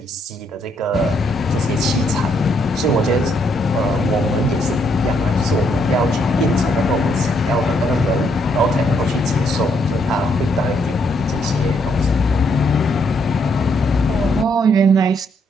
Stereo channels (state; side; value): normal; both; correlation 0.73